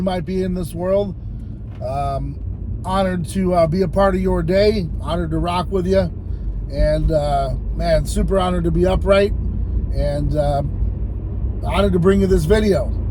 might be in this world. Honored to be a part of your day. Honored to rock with you. And, man, super honored to be upright. And honored to bring you this video.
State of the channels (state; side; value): identical; both; correlation 1.00